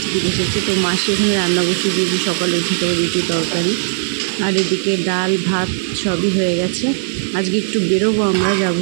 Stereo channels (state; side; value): silent; left; digital silence